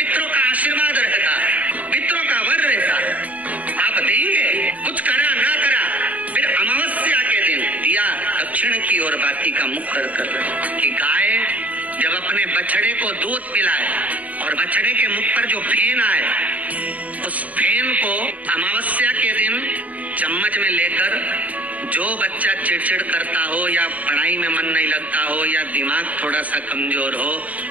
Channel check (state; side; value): late; left; 0.071 ms